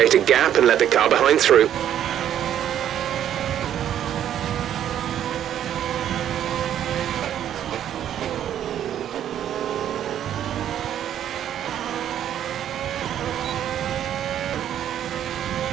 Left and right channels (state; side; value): quieter; left; 10.4 dB